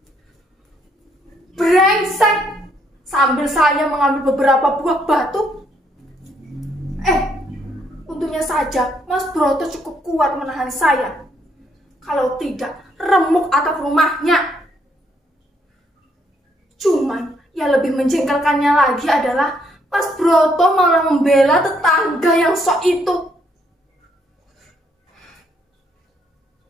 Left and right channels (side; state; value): both; normal; correlation 0.71